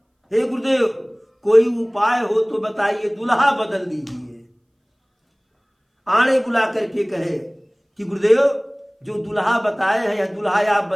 हे गुरुदेव, कोई उपाय हो तो बताइए, दुल्हा बदल दीजिए। आणे बुला करके कहे कि गुरुदेव, जो दुल्हा बताए हैं, यह दुल्हा आप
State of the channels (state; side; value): identical; both; correlation 1.00